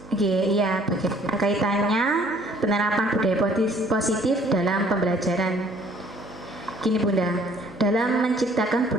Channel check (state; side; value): normal; both; correlation 0.58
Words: Oke, iya, bagaimana kaitannya penerapan budaya positif dalam pembelajaran? Gini Bunda, dalam menciptakan